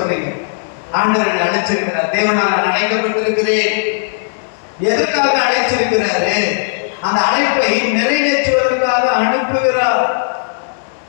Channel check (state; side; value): silent; right; digital silence